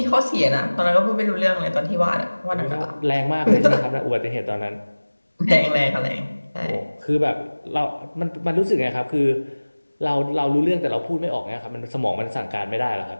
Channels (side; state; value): both; inverted; correlation -1.00